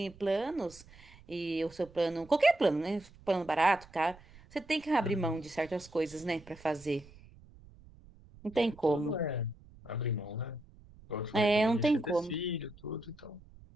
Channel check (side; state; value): right; noise; rumble, 23 dB below the sound